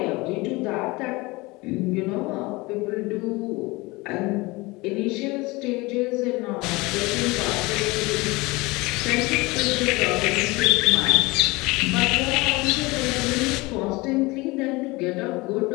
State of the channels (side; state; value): right; quieter; 23.1 dB